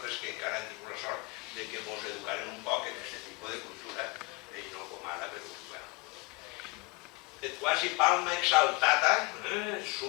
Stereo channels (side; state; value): right; quieter; 27.7 dB